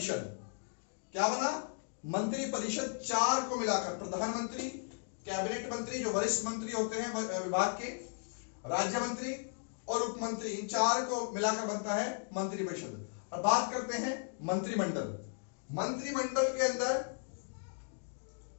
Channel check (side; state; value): right; silent; digital silence